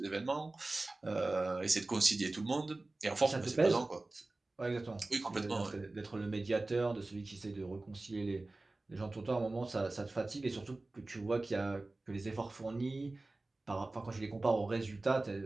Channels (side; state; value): left; quieter; 3.1 dB